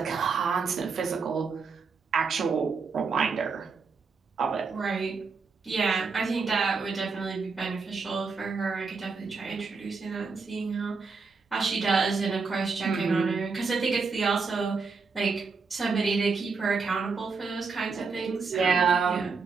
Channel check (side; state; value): left; quieter; 4.8 dB